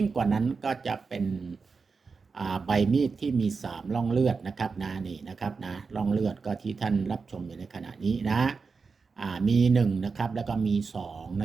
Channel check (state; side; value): quieter; left; 4.8 dB